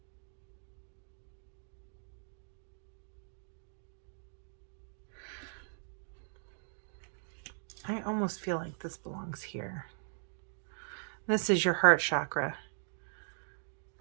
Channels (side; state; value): left; silent; digital silence